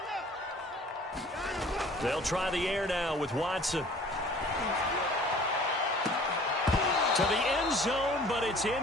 They'll try the air now with Watson. To the end zone, but it's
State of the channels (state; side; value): normal; both; correlation 0.50